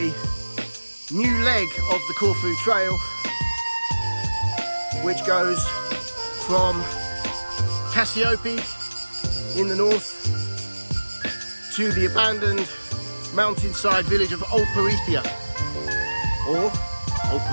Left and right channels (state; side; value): inverted; both; correlation -1.00